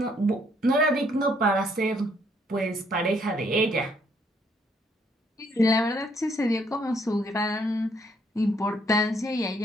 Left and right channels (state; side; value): normal; both; correlation 0.68